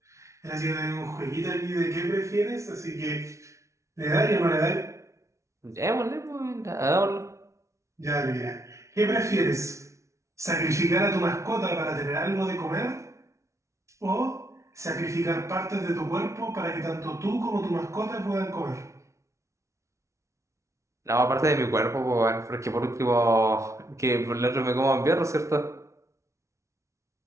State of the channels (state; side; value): late; left; 0.14 ms